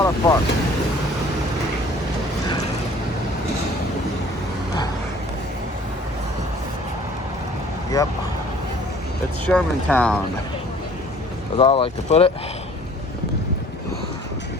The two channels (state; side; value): normal; both; correlation 0.52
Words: of fun. Yep. It's Shermantown, as I like to put it.